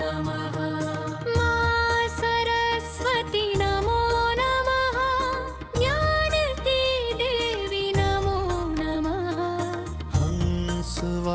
नमः। मां सरस्वती नमो नमः। ज्ञान की देवी नमो नमः।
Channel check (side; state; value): both; identical; correlation 1.00